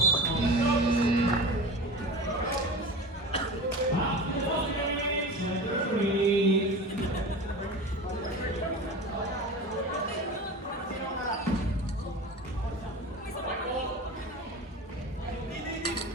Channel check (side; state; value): both; normal; correlation 0.33